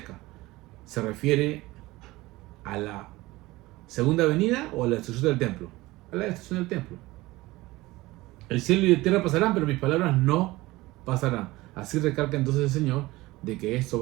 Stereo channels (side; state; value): left; quieter; 19.6 dB